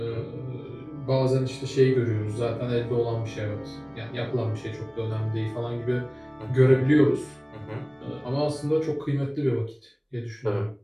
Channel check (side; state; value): both; identical; correlation 1.00